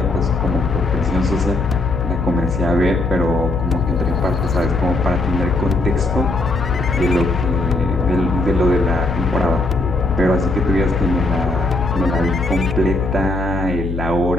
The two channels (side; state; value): left; noise; hum, 4 dB below the sound